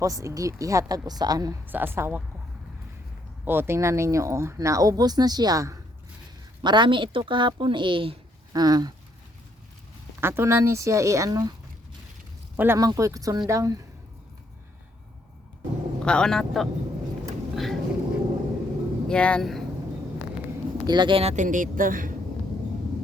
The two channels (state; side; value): normal; both; correlation 0.71